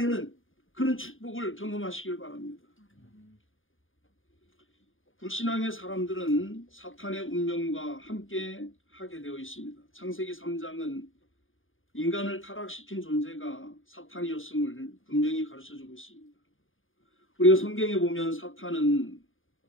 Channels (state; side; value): late; right; 0.59 ms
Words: 그런 축복을 경험하시길 바랍니다. 불신앙의 사람들은 사탄의 운명과 함께 하게 되어 있습니다. 창세기 3장은 인간을 타락시킨 존재가 사탄이었음을 분명히 가르쳐주고 있습니다. 우리가 성경에 보면 사탄은